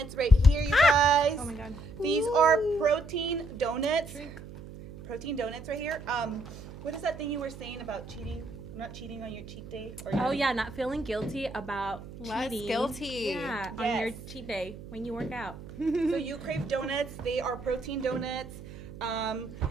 right here, you guys. Oh my god. These are protein donuts. Protein donuts right here. What is that thing you were saying about cheating? Not cheating on your cheat day? Or Oh yeah, not feeling guilty about cheating. Guilty. Yeah, on Yes. your cheat day when you work out. So You Crave Donuts. They are protein donuts.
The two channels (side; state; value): right; noise; hum, 14 dB below the sound